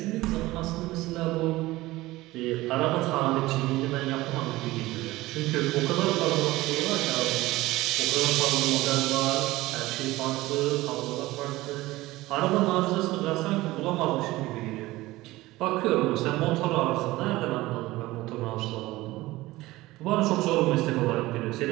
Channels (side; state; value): left; quieter; 18.5 dB